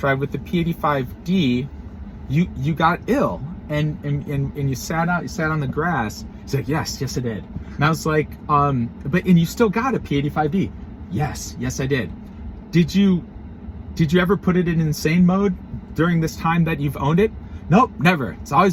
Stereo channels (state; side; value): identical; both; correlation 1.00